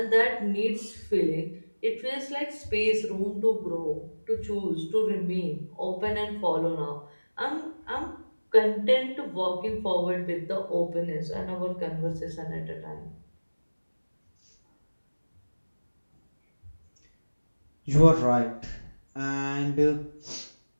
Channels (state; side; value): inverted; both; correlation -1.00